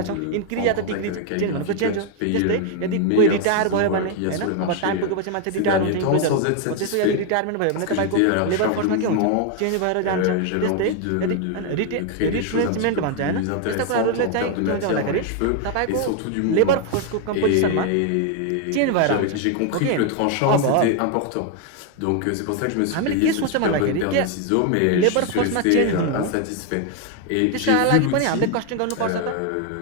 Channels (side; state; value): both; different; correlation 0.01